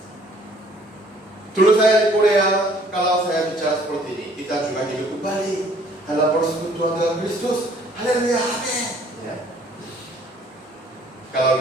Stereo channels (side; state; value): both; normal; correlation 0.58